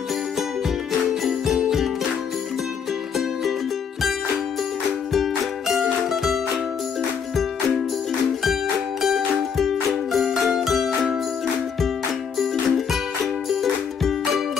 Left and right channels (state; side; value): quieter; right; 6.8 dB